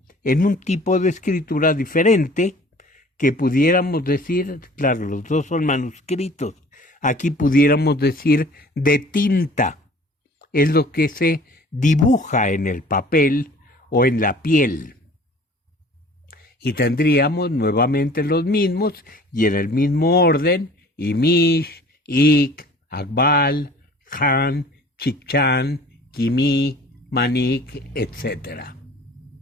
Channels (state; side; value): normal; both; correlation 0.48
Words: en un tipo de escritura diferente, que pudiéramos decir, claro, los dos son manuscritos, aquí pudiéramos decir de tinta, es lo que se dibuja en el papel o en la piel. Y tendríamos nuevamente los mismos y en el mismo orden, Imish, Ik, Akbal, Khan, Chikchan, Kimi, Manik, etc.